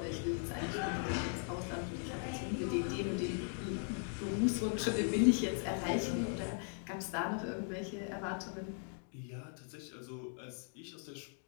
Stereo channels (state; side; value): silent; right; 52 dB below the other